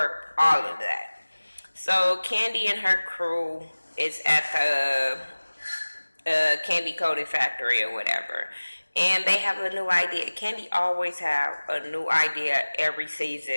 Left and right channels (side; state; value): both; inverted; correlation -1.00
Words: all of that. So Candy and her crew is at the candy coated factory or whatever, and they have a new idea. Candy always have a new idea every